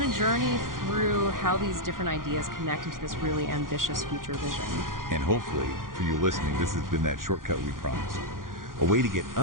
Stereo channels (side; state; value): left; late; 0.90 ms